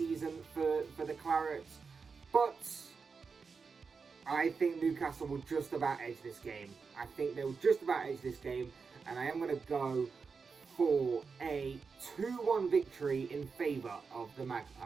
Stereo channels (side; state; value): left; quieter; 5.1 dB